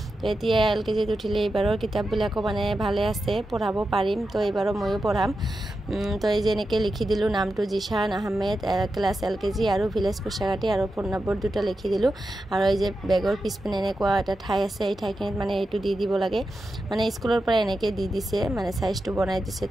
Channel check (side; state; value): both; normal; correlation 0.90